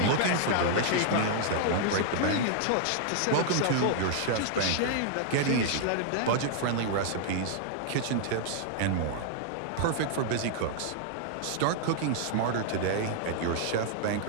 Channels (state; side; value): different; both; correlation -0.01